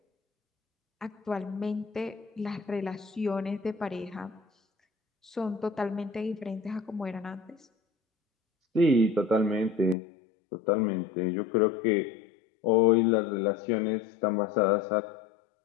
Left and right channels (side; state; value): right; drops out; at 10.0 s